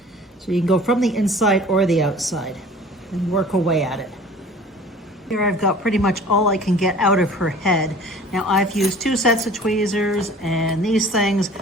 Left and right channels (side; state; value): both; normal; correlation 0.45